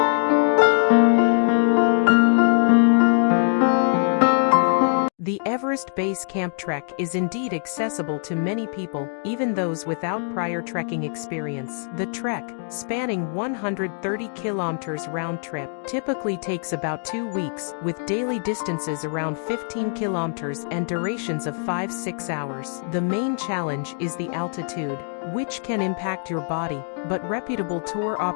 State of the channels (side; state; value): right; silent; 63 dB below the other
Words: The Everest Base Camp trek is indeed accessible to many people, even those without prior trekking experience. The trek, spanning 130 kilometers round trip, typically takes about 2 weeks, with daily distances around 15 kilometers and durations of 5-6 hours. The main challenge is the altitude, which can impact your body, but reputable tour